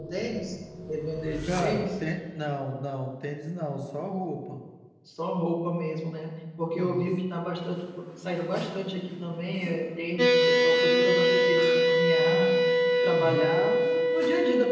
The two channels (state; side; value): identical; both; correlation 1.00